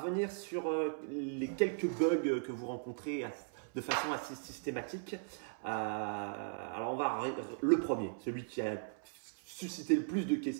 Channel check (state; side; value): silent; left; 53 dB below the other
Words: sur les quelques bugs que vous rencontrez de façon assez systématique. Alors on va le premier, celui qui a suscité le plus de